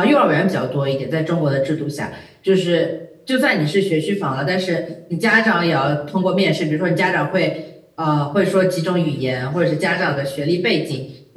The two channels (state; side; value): identical; both; correlation 1.00